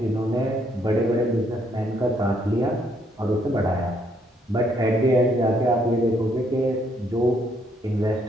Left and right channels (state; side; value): normal; both; correlation 0.70